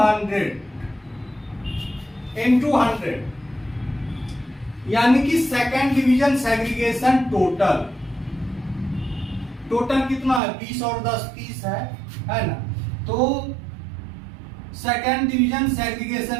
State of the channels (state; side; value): drops out; left; at 10.4 s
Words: 100, यानी कि सेकेंड डिवीजन सेग्रीगेशन टोटल कितना है? 20 और 10 30 है ना। तो सेकेंड डिवीजन